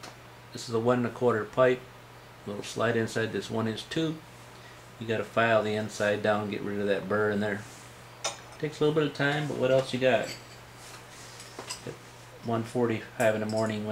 this is a 1 1/4 pipe, little slide inside this 1-inch tube. You got to file the inside down, get rid of that burr in there. Takes a little bit of time, but what else you got? At 1:45 in the morning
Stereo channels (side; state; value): both; identical; correlation 1.00